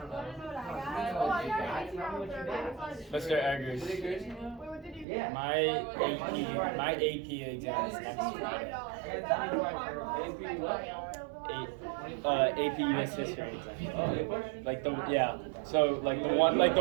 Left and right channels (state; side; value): drops out; left; at 5.1 s